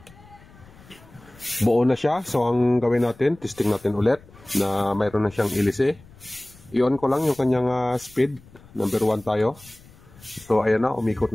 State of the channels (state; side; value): noise; left; rumble, 24 dB below the sound